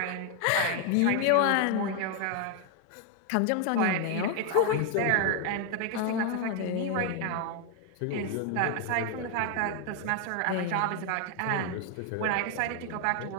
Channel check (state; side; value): different; both; correlation 0.01